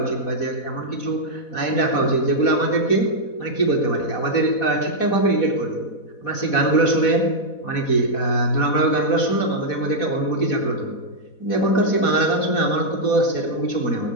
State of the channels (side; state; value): right; late; 4.1 ms